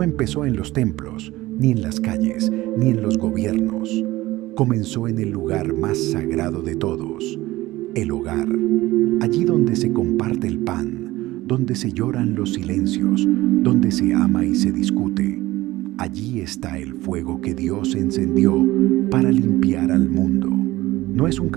empezó en los templos, ni en las calles, ni en los gobiernos. Comenzó en el lugar más sagrado de todos, el hogar, allí donde se comparte el pan, donde se lloran los silencios, donde se ama y se discute. Allí está el fuego que Dios encendió para limpiar al mundo. No es un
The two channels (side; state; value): left; quieter; 17.9 dB